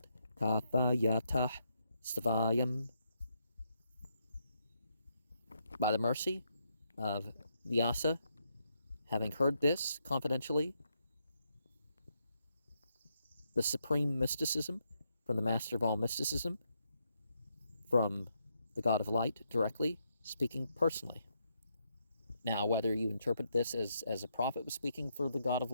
kathayatah stavayam. By the mercy of Vyasa, having heard this confidentially, the supreme mysticism from the master of all mysticism, from the God of light directly, speaking personally. Now, whether you interpret this as a prophet was speaking for the God of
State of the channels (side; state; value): both; inverted; correlation -0.79